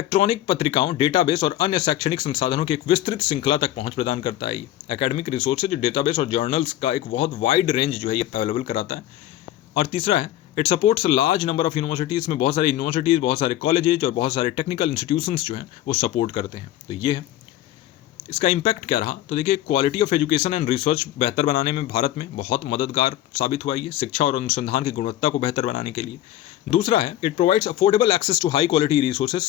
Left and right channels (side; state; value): right; quieter; 13.6 dB